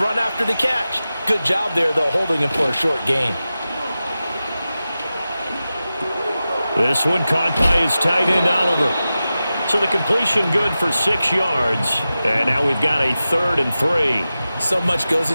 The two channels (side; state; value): both; inverted; correlation -0.94